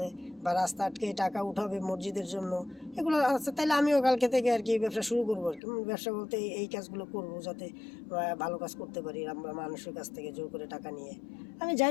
বা রাস্তা আটকে টাকা উঠাবে মসজিদের জন্য, এগুলো আছে, তাহলে আমিও কালকে থেকে আর কি ব্যবসা শুরু করবো আর কি। ব্যবসা বলতে এই কাজগুলো করবো, যাতে ভালো কাজ করতে পারি। আমরা মানুষের কাছ থেকে জোর করে টাকা নিয়ে আমি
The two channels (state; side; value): drops out; right; at 5.6 s